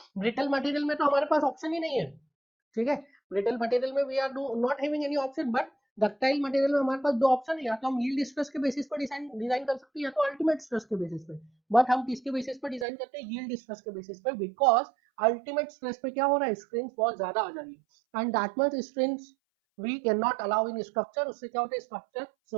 brittle material में तो हमारे पास ऑप्शन ही नहीं है। ठीक है, ब्रिटल मटेरियल में we are not having any option, but ductile material में हमारे पास दो ऑप्शन है, या तो हम यील्ड स्ट्रेस के बेसिस पर डिजाइन कर सकते हैं, या तो अल्टीमेट स्ट्रेस के बेसिस पे। बट हम किसके बेसिस पर डिजाइन करते हैं? यील्ड स्ट्रेस के बेसिस पे, बिकॉज अल्टीमेट स्ट्रेस पे क्या हो रहा है, स्ट्रेन बहुत ज्यादा आ जा रही है, and that much strain we can not allow in structure. उससे क्या होता है, स्ट्रक्चर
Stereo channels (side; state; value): left; drops out; at 12.9 s